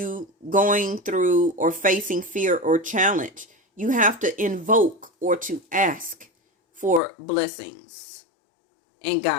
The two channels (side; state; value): right; drops out; at 7.0 s